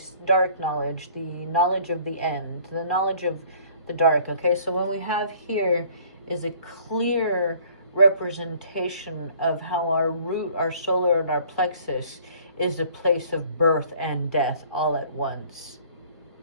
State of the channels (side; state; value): both; inverted; correlation -0.54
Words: dark knowledge, the knowledge of the end, the knowledge of the dark. Okay, so what we have here is a clear representation of how our root, our solar, and our plexus is a place of birth and death all at once.